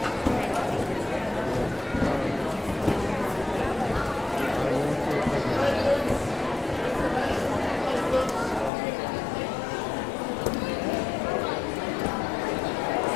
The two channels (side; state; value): right; drops out; at 8.7 s